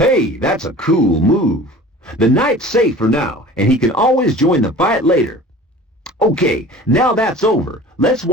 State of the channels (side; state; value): both; normal; correlation 0.42